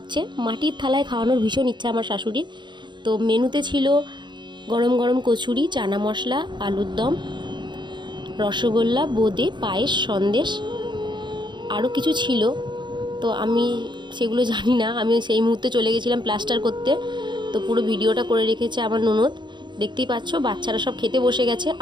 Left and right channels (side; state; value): left; late; 0.22 ms